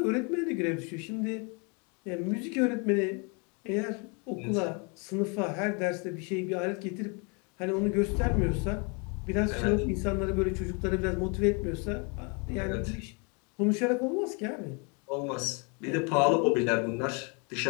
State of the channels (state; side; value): quieter; right; 33.7 dB